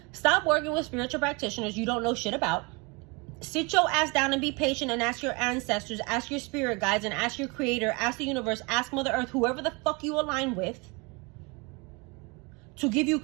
Stop working with spiritual practitioners you don't know shit about. Sit your ass down and be patient and ask your ancestors, ask your spirit guides, and ask your creator, ask the universe, ask Mother Earth, whoever the fuck you align with, to give you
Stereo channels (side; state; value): left; quieter; 28.7 dB